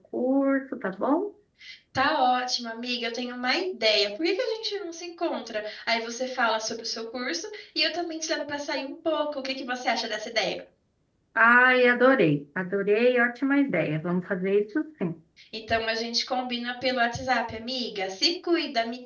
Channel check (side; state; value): both; identical; correlation 1.00